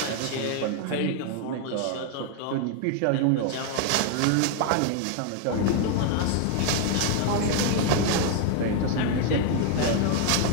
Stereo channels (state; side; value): different; both; correlation 0.01